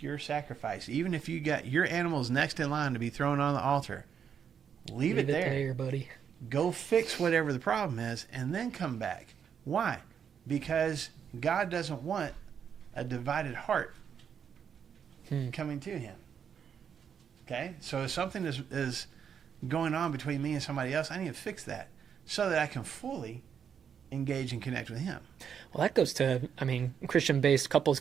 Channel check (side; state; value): left; quieter; 7.7 dB